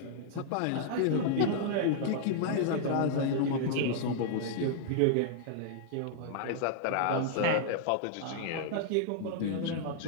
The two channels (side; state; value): both; different; correlation -0.01